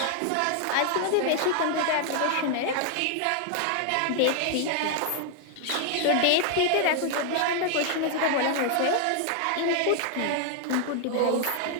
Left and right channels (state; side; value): different; both; correlation 0.00